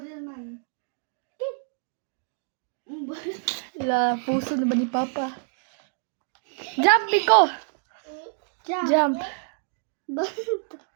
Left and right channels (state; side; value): silent; left; digital silence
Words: La, puso na ba ni Papa? Jump, Miko. Jump.